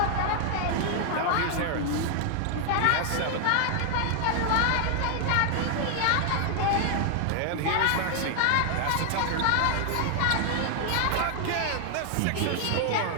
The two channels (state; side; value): different; both; correlation 0.00